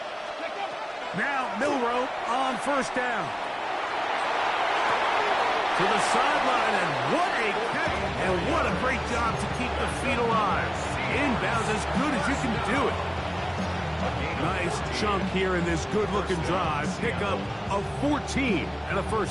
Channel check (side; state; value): both; identical; correlation 1.00